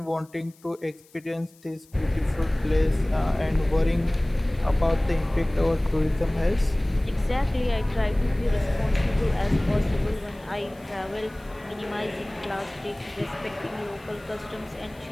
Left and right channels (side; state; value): left; noise; hiss, 28 dB below the sound